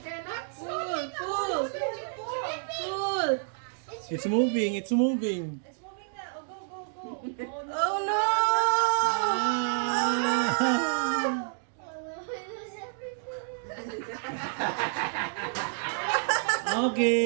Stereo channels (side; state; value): left; silent; digital silence